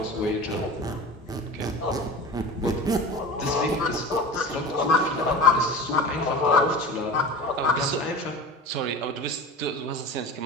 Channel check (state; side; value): normal; both; correlation 0.33